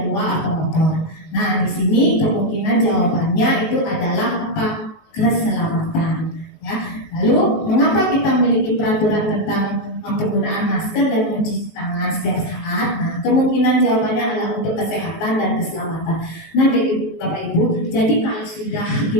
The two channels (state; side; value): late; right; 19 ms